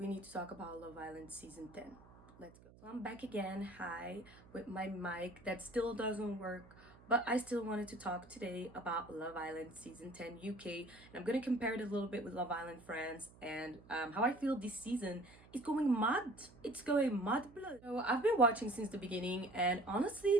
need to talk about Love Island season 10. Let's go. So I'm back again, hi, with my mic that still doesn't work, but I still wanted to talk today about Love Island season 10 UK, and I'm gonna compare it a little bit with Love Island France and how I feel this season is going mad. It's going mad blood. So I've been watching since the beginning, and honestly,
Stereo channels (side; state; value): right; noise; hum, 23 dB below the sound